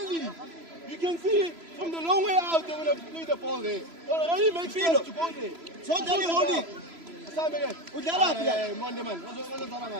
You can see from the long way out they're going to play the ball there. Already makes sense to go there. So tell you hold it. Asam again. Udala pia. Monday man.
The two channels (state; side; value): late; left; 3.0 ms